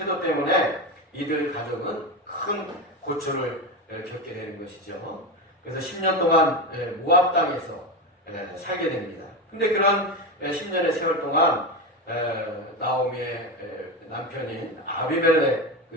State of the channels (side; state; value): both; normal; correlation 0.17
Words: 때문에 이들 가족은 큰 고초를 겪게 되는 것이죠. 그래서 10년 동안 모압 땅에서 살게 됩니다. 근데 그런 10년의 세월 동안 나오미의 남편인